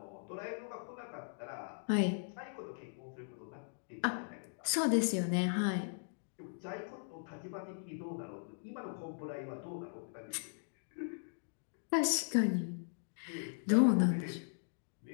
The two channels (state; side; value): silent; right; digital silence